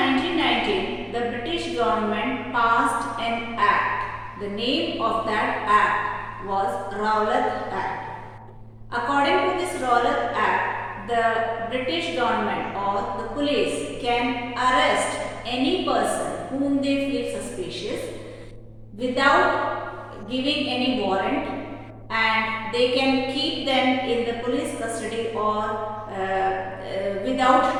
the British government passed an act. The name of that act was Rowlatt Act. According to this Rowlatt Act, the British government or the police can arrest any person whom they feel suspicious without giving any warrant, and they can keep them in the police custody or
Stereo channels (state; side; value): identical; both; correlation 1.00